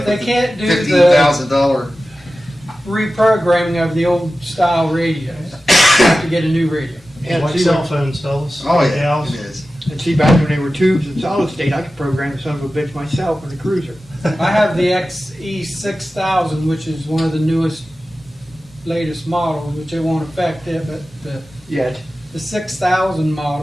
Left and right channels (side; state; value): both; normal; correlation 0.94